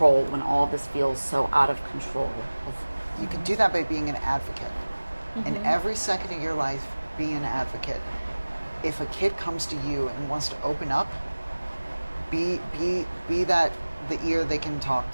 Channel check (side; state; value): both; inverted; correlation -1.00